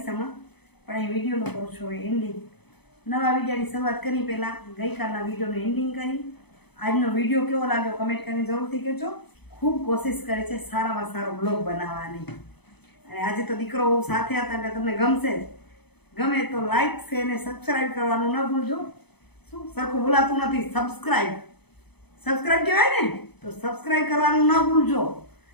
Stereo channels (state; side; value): late; right; 0.98 ms